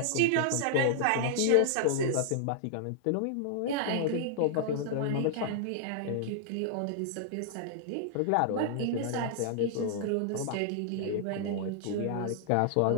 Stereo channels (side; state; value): both; different; correlation -0.01